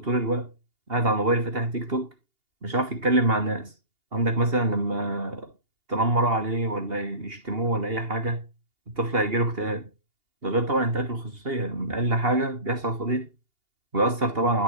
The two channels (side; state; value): left; late; 2.8 ms